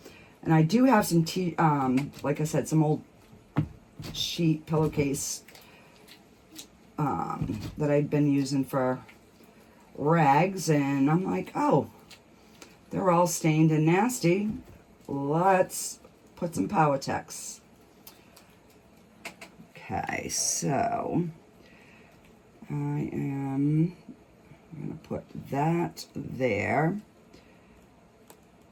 And I do have some like I said, some old sheet pillowcase that I'd been using for rags, and I'm like, oh, they're all stained and nasty. Let's put some Powertex. Okay, so I'm going to put that there.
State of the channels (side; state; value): both; identical; correlation 1.00